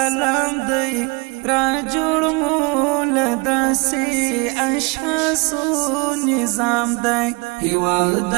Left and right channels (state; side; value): quieter; left; 28.7 dB